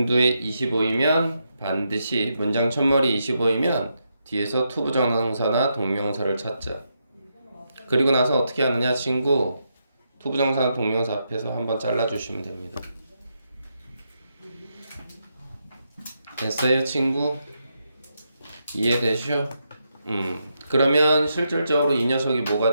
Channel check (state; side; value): inverted; both; correlation -0.82